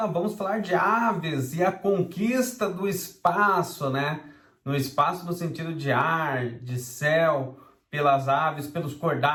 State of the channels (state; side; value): identical; both; correlation 1.00